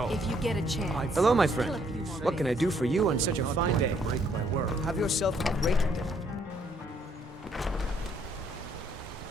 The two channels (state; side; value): normal; both; correlation 0.68